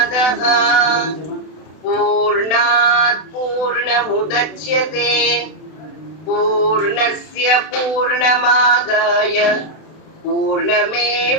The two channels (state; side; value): late; right; 32 ms